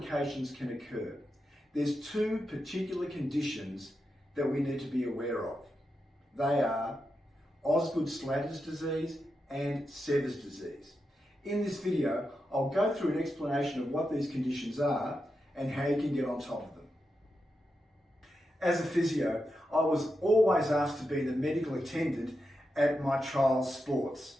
can occur. There's two particular conditions that we need to be aware of. They are Osgood-Schlatter's disease and Sever's disease. In this video, I'll go through an explanation of what these conditions are and how you can get on top of them. As a physio, I was always asked to be the medical attendant at my child's sports,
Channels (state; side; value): normal; both; correlation 0.88